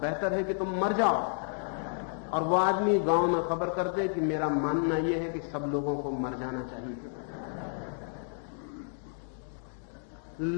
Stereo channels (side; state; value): right; silent; 57 dB below the other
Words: बेहतर है कि तुम मर जाओ। और वो आदमी गांव में खबर कर दे कि मेरा मानना यह है कि सब लोगों को मर जाना चाहिए।